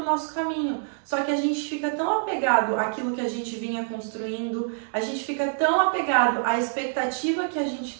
o nosso caminho. Só que a gente fica tão apegado àquilo que a gente vinha construindo, a gente fica tão apegado à expectativa que a gente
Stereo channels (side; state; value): left; silent; digital silence